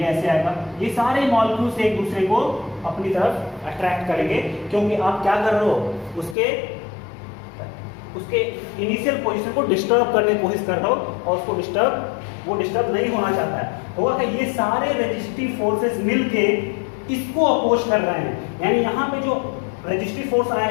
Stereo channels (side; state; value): right; drops out; at 6.4 s